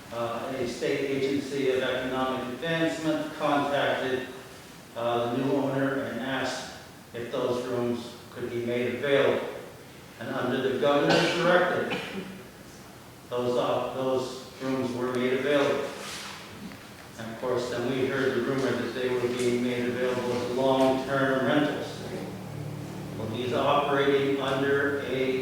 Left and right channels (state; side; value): identical; both; correlation 1.00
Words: a state agency of economic advancement contacted the new owner and asked if those rooms could be made available. And under the governor's directive, those rooms were made available. And of course, then we heard the rumor that they were being made available as long-term rentals. Well, he's operating under